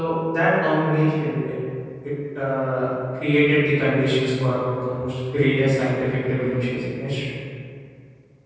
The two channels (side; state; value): both; identical; correlation 1.00